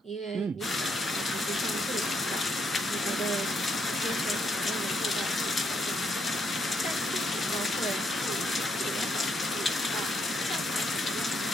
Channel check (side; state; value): both; normal; correlation 0.75